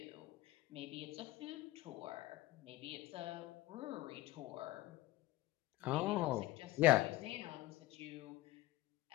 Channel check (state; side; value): quieter; right; 17.9 dB